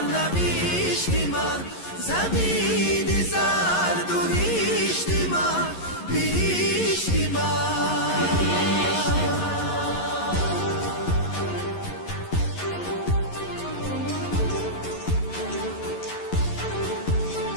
من، زمین زرد و هشتی من، بهشتی من.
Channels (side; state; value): right; late; 11 ms